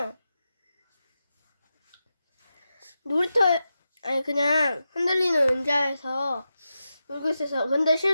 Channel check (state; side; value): inverted; both; correlation -0.90